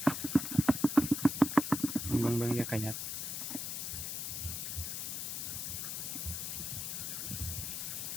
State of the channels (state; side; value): noise; left; hiss, 3 dB below the sound